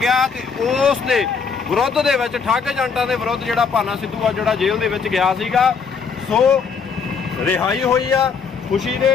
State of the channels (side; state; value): right; quieter; 5.7 dB